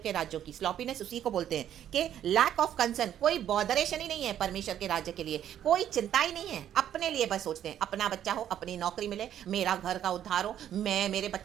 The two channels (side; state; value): left; quieter; 10.6 dB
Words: राज्यों की। स्लॉपीनेस उसी को बोलते हैं कि लैक ऑफ कंसर्न, कोई बॉदरेशन ही नहीं है परमेश्वर के राज्य के लिए, कोई चिंता ही नहीं है। अपने लिए बस सोचते हैं, अपना बच्चा हो, अपनी नौकरी मिले, मेरा घर का उद्धार हो, मेरे